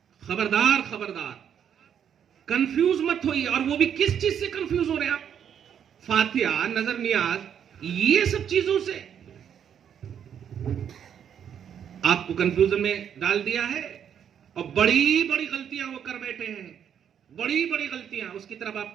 खबरदार खबरदार, कंफ्यूज मत होइए। और वो भी किस चीज से कंफ्यूज हो रहे हैं आप? फातिहा, नजर नियाज, ये सब चीजों से आपको कंफ्यूजन में डाल दिया है। और बड़ी बड़ी गलतियां वो कर बैठे हैं, बड़ी बड़ी गलतियां, उसकी तरफ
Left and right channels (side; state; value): left; quieter; 8.6 dB